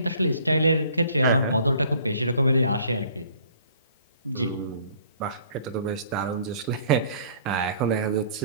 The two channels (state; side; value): inverted; both; correlation -0.54